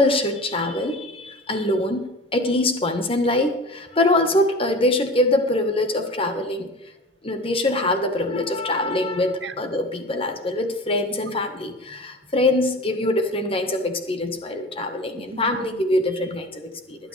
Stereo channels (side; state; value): both; normal; correlation 0.35